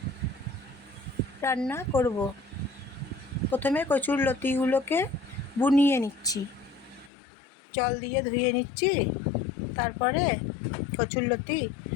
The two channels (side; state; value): right; drops out; at 7.1 s